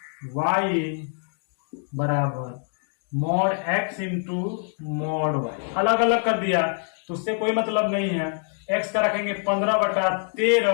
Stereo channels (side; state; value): right; silent; 59 dB below the other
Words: वाई बराबर mod x into mod Y. अलग अलग कर दिया तो उससे कोई मतलब नहीं है। x का रखेंगे